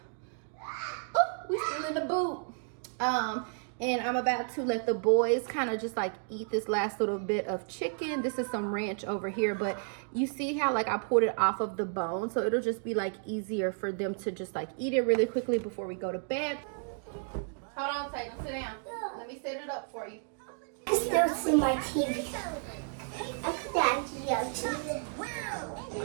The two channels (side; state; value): left; silent; 56 dB below the other